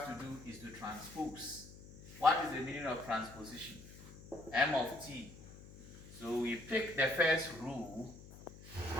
to do is to transpose. What is the meaning of transposition? M of T. So we pick the first rule,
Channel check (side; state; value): left; noise; hum, 17 dB below the sound